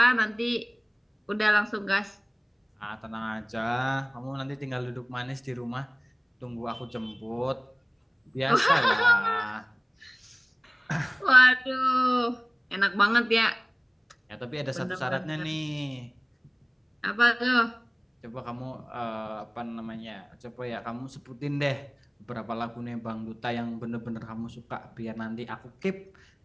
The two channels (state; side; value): identical; both; correlation 1.00